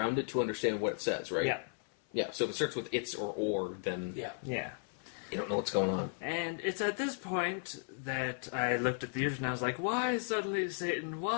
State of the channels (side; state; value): right; silent; 54 dB below the other